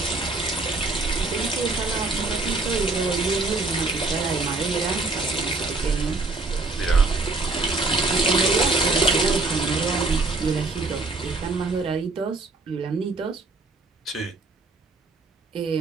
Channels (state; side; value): quieter; left; 3.4 dB